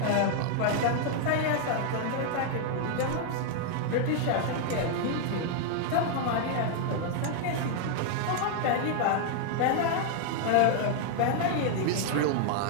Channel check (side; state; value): both; different; correlation 0.00